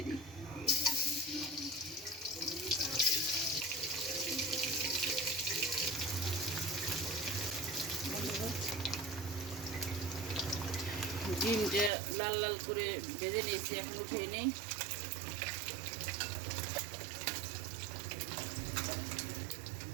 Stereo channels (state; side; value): drops out; left; at 11.9 s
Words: দিই। ডিমটা লাল লাল করে ভেজে নিয়েছি, এখন উঠিয়ে নিই।